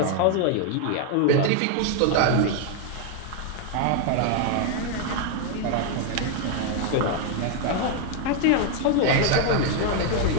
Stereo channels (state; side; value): different; both; correlation 0.00